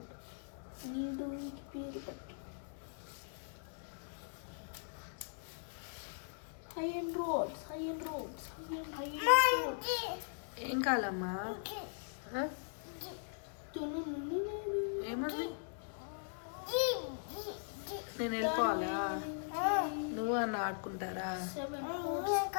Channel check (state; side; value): silent; right; digital silence